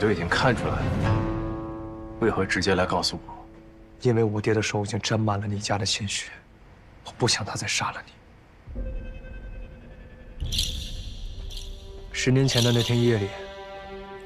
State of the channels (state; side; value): identical; both; correlation 1.00